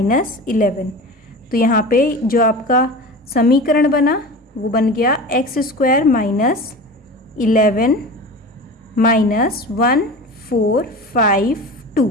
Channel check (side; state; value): both; normal; correlation 0.32